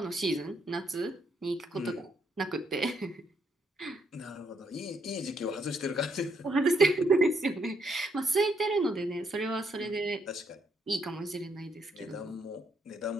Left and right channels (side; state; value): both; normal; correlation 0.73